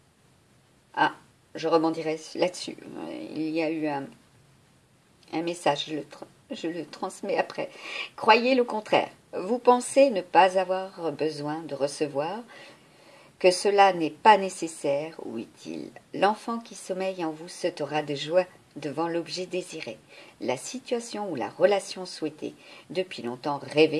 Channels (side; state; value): both; identical; correlation 1.00